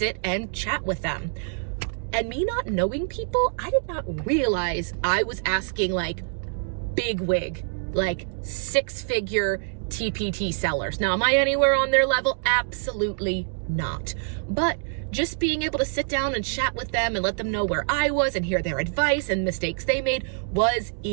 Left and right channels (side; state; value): left; silent; digital silence